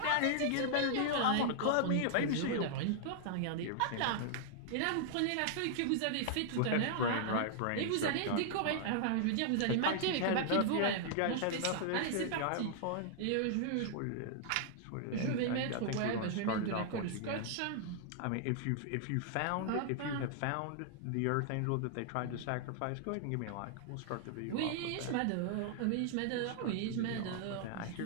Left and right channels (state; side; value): different; both; correlation -0.01